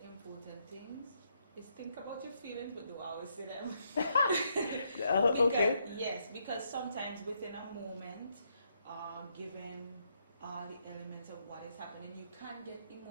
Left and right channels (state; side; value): inverted; both; correlation -0.76